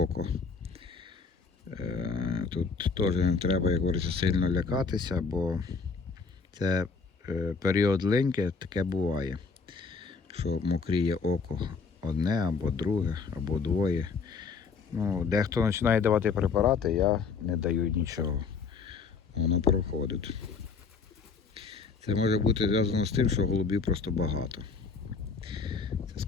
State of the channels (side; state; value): right; quieter; 5.1 dB